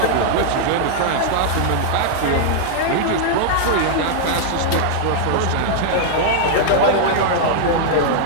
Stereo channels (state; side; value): different; both; correlation -0.01